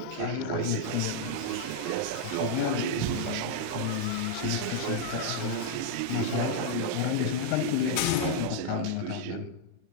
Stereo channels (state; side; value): different; both; correlation -0.01